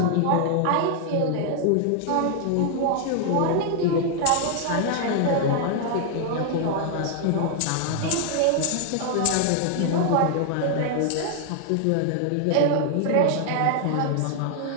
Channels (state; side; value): different; both; correlation 0.00